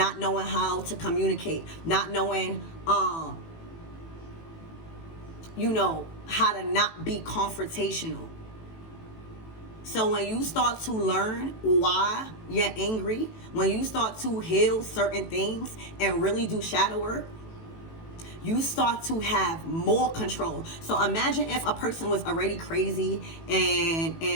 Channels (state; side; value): late; right; 18 ms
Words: knowing how to communicate, not knowing how to not be confrontational. So when you start to learn why you're angry, when you start to heal certain things and really do shadow work, you start to have more control. So imagine if a person was already crazy